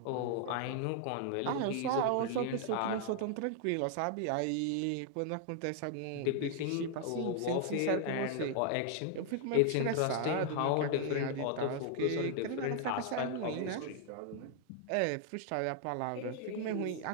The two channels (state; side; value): different; both; correlation 0.00